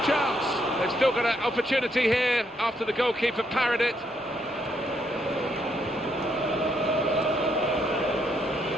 chance. They've still got an opportunity here after the goalkeeper parried it.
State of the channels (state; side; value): normal; both; correlation 0.75